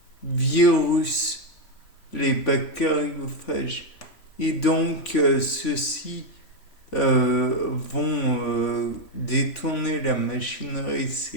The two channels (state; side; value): late; right; 3.0 ms